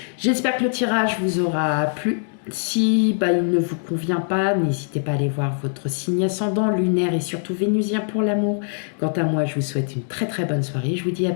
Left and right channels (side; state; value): right; silent; digital silence